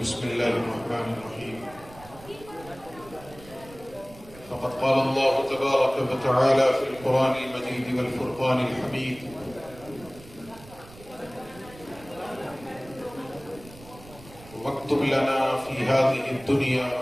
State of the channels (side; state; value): right; noise; rumble, 20 dB below the sound